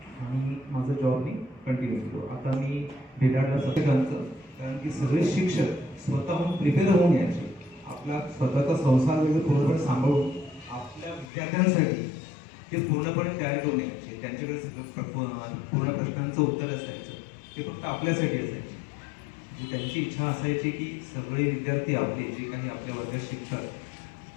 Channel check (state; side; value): drops out; right; at 11.3 s